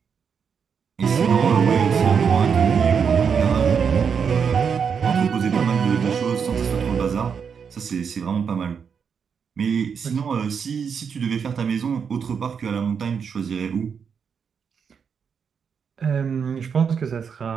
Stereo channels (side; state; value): left; quieter; 6.6 dB